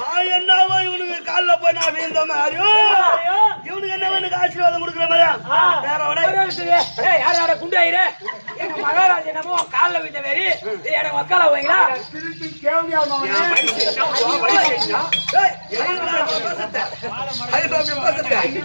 என்னவோ இவனுக்கு கால்ல போய் நான் வீழ்ந்த மாதிரியோ இவனுக்கு என்ன எனக்கு ஆசீர்வாதம் கொடுக்குற மாதிரியா வேற ஏய் யார் யார குண்டு ஆயிரே எங்க மகாராஜா என்னமோ கால்ல விட்ட மாதிரி எனக்கு வக்கால போவீங்களா? திருப்பி கேள்வியா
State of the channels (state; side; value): inverted; both; correlation -1.00